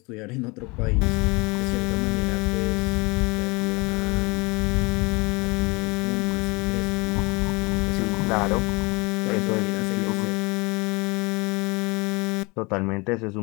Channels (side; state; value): right; quieter; 26.5 dB